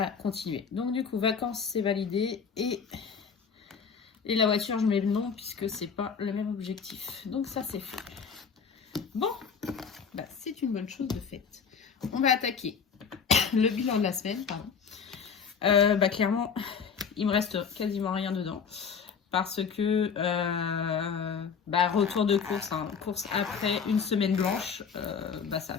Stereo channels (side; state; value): right; quieter; 6.3 dB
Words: continué. Donc du coup, vacances, c'est validé. Et la voiture, je mets le nom, puisque c'est pas le même objectif. Donc ça, c'est fait. Bon, c'est une bonne chose de faite. On va attaquer le bilan de la semaine, pardon. Clairement, il me reste quasiment rien dedans. Parce que, retour de course, hein, course après une semaine blanche,